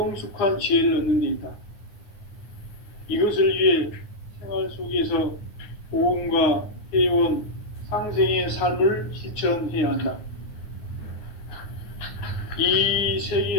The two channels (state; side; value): late; right; 9.5 ms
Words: 지혜를 얻는 데 있다. 이것을 위해 생활 속에서 보험과 회원, 상생의 삶을 실천해야 한다. 이